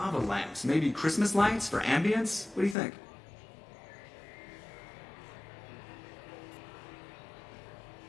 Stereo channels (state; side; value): drops out; right; at 2.8 s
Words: lamps, maybe Christmas lights for ambience. What do you think?